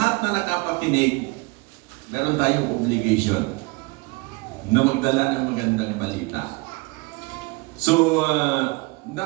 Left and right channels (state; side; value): quieter; left; 26.9 dB